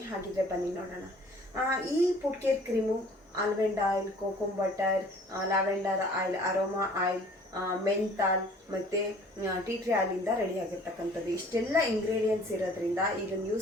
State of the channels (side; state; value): both; normal; correlation 0.52